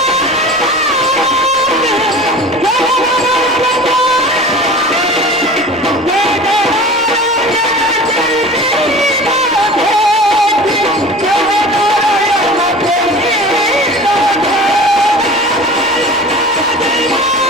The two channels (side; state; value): left; noise; rumble, 28 dB below the sound